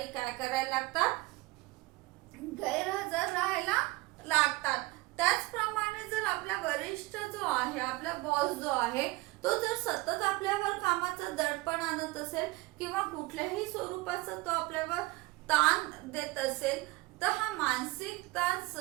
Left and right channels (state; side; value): quieter; left; 21.9 dB